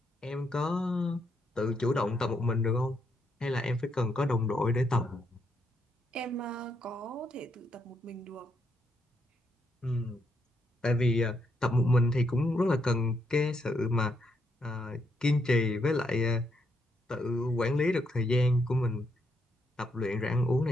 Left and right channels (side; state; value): both; normal; correlation 0.77